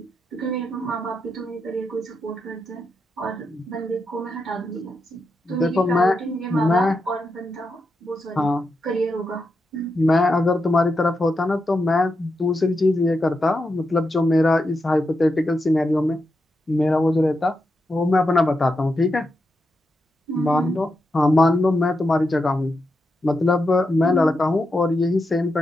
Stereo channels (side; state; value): both; normal; correlation 0.86